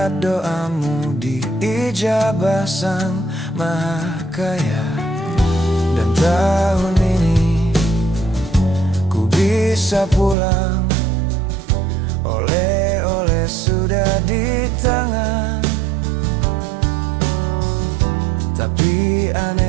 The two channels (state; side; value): drops out; left; at 10.4 s